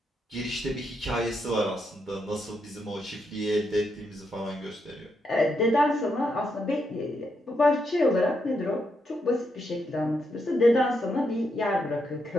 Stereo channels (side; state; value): both; normal; correlation 0.80